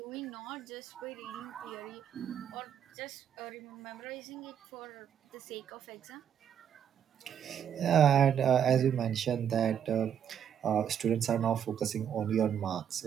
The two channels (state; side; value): quieter; left; 8.8 dB